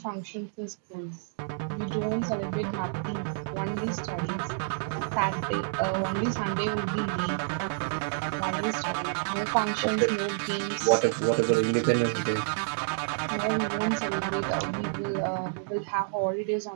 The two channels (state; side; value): silent; left; digital silence